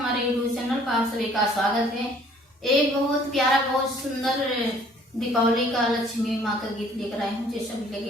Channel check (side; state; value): both; normal; correlation 0.57